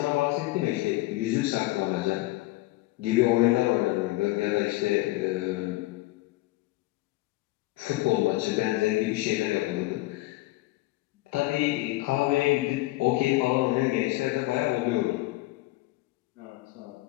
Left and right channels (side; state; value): right; quieter; 19.4 dB